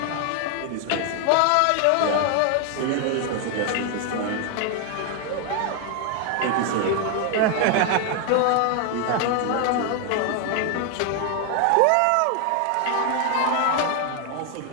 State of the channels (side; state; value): both; different; correlation 0.00